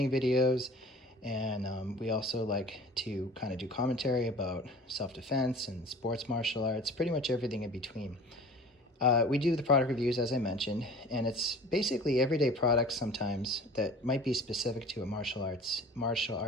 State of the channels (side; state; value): both; normal; correlation 0.44